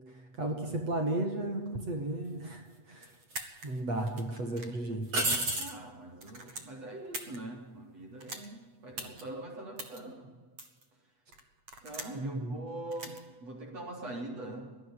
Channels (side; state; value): left; late; 8.2 ms